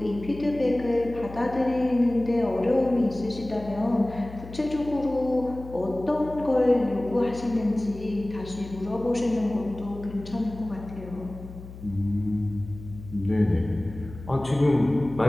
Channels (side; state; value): left; noise; hum, 14 dB below the sound